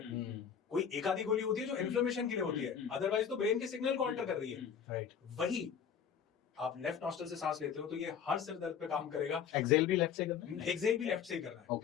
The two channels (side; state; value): right; quieter; 7.7 dB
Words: कोई एक आधी गोली होती है जो इन्फ्लेमेशन के लिए होती है, अदरवाइज तो ब्रेन के सिग्नल को अल्टर कर रही है, राइट? वही आप लेफ्ट नॉस्ट्रल से सांस लेते हो तो ये हर सिर दर्द पे काम करेगा। एक्सेल भी लेफ्ट से करना है? एक्सेल भी लेफ्ट से ही करना है।